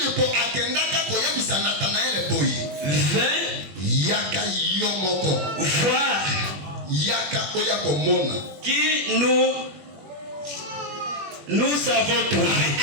Yaka yomoko. Voir Yaka oyako mona. Qui nous avons trouvé.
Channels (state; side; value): late; left; 21 ms